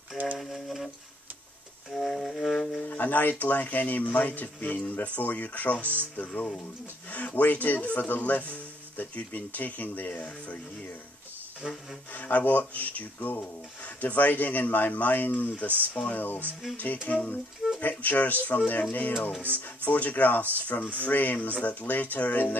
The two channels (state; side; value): normal; both; correlation 0.67